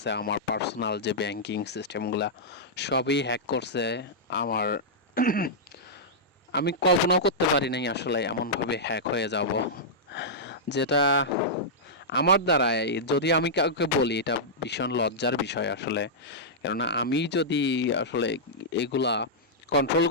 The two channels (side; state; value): both; normal; correlation -0.11